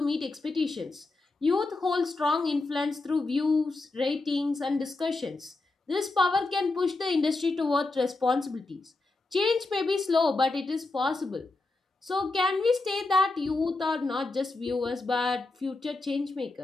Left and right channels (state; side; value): quieter; right; 3.3 dB